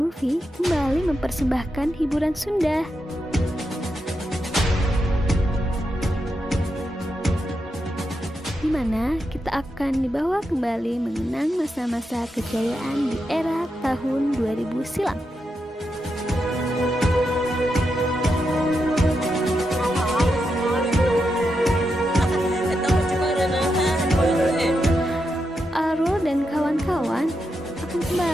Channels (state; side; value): normal; both; correlation 0.85